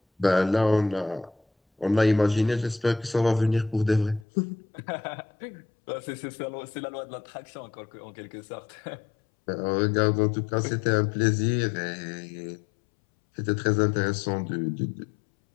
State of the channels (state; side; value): drops out; right; at 4.2 s